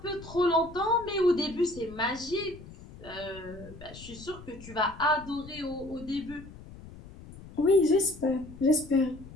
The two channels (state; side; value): noise; left; rumble, 17 dB below the sound